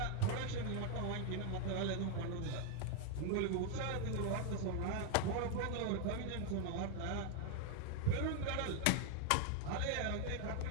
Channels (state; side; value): different; both; correlation 0.00